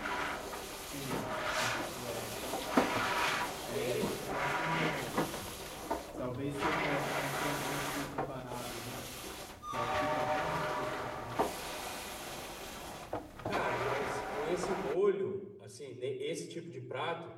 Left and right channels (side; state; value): both; identical; correlation 1.00